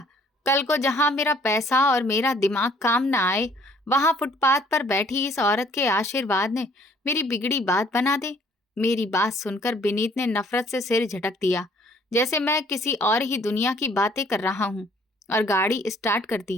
कल को जहां मेरा पैसा और मेरा दिमाग काम ना आए, वहां फुटपाथ पर बैठी इस औरत के आशीर्वाद ने मेरी बिगड़ी बात बना दे। मेरी बात सुनकर विनीत ने नफरत से सिर झटक दिया, जैसे मैं किसी और ही दुनिया की बातें कर रहा हूँ, और गाड़ी स्टार्ट कर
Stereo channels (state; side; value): normal; both; correlation 0.59